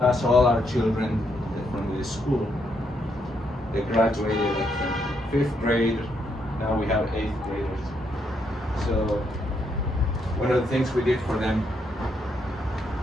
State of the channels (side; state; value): both; normal; correlation 0.76